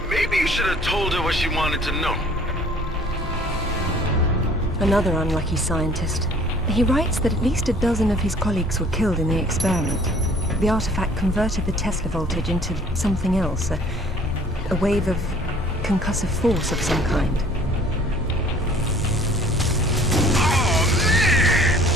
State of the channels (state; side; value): normal; both; correlation 0.53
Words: Maybe you should have told her what she wanted to know. Another unlucky scientist. He writes that at least a dozen of his colleagues were killed in the experiment. The artifact converted the Tesla voltage into something else, a wave of concussive force of some kind. Oh, man!